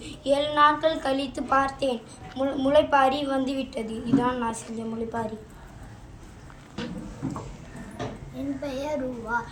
7 நாட்கள் கழித்து பார்த்தேன், முளைப்பாரி வந்துவிட்டது. இதுதான் நான் செஞ்ச முளைப்பாரி. என் பெயர் ரூவா.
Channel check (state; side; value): identical; both; correlation 1.00